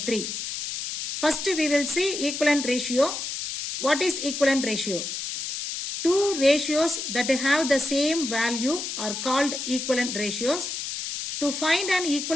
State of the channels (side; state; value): left; noise; hiss, 5 dB below the sound